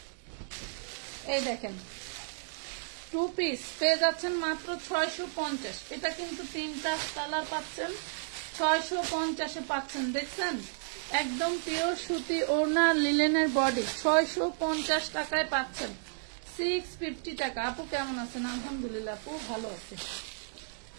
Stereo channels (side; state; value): left; silent; digital silence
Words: এই দেখেন 2 পিস পেয়ে যাচ্ছেন মাত্র 650। এটা কিন্তু 3টা কালার পাচ্ছেন, 650-এ পাচ্ছেন। দেখছেন একদম পিওর সুতি ওড়না লিলেনের বডি, 650 টাকায় পাচ্ছেন, 650 টাকা। আপু কেমন আছেন? আলহামদুলিল্লাহ আপু ভালো আছে।